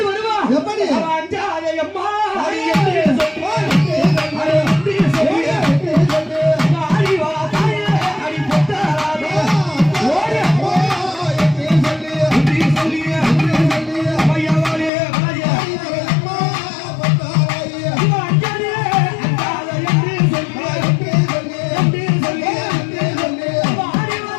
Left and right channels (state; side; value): drops out; right; at 14.9 s